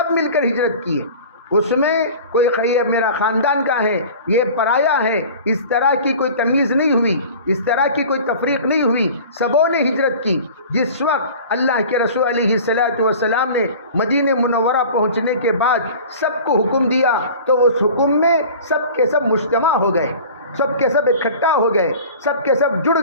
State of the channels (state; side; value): inverted; both; correlation -0.41